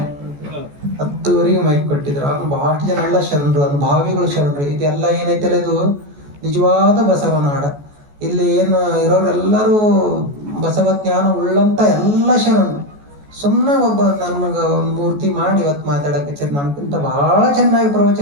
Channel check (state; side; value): late; left; 14 ms